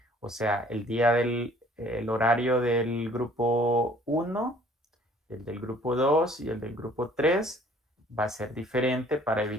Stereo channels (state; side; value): normal; both; correlation 0.56